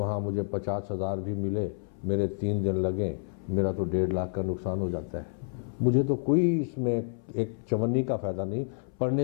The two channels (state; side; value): silent; right; 58 dB below the other